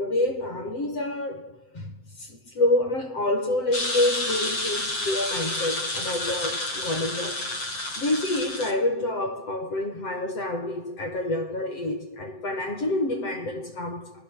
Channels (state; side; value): late; right; 7.8 ms